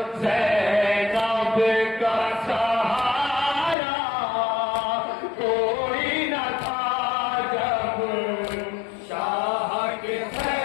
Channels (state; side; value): drops out; right; at 3.8 s